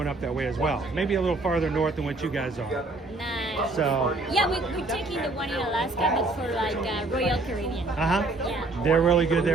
up that way as well. Maybe a little farther north than what you guys are. Nice. So. Yeah, we're taking the one in Alaska, but for like Royal Caribbean. Yeah. They're really good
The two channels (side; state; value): left; quieter; 3.1 dB